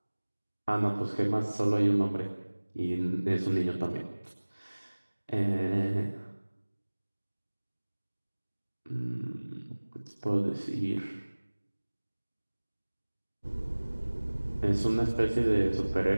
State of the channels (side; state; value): both; inverted; correlation -1.00